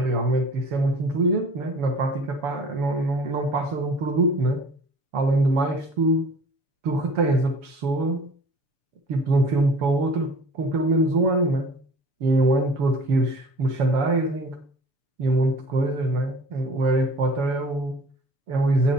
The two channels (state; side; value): late; left; 7.0 ms